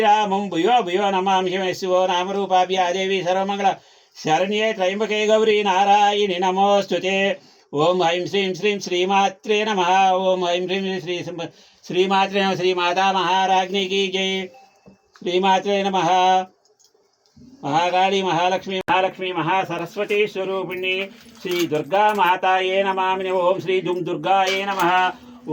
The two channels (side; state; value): both; identical; correlation 1.00